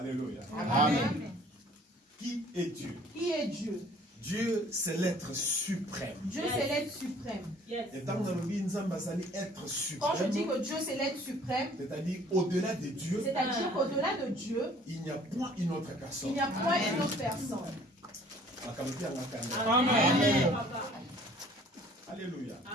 Amen. Qui est Dieu? Qui est Dieu? Dieu, c'est l'être suprême. Dieu, c'est l'être suprême. Et tant que nous être Quand je suprême, dis que Dieu, c'est l'être suprême, c'est-à-dire au-delà de Dieu, c'est-à-dire qu'au-delà de Dieu, il n'y a point une autre il personne. n'y a point une autre personne. Amen. Alléluia.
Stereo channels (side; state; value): both; normal; correlation 0.54